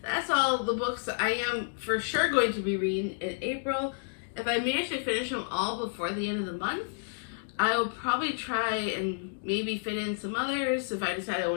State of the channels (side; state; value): right; silent; digital silence